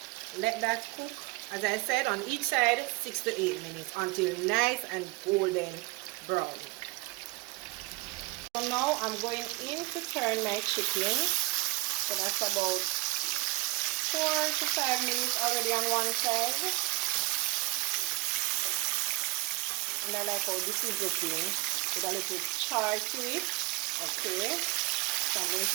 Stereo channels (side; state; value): left; quieter; 23.7 dB